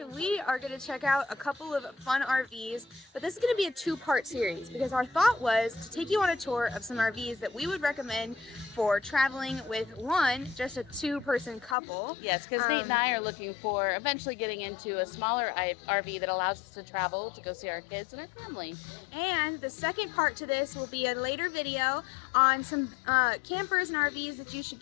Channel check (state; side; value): drops out; right; at 11.8 s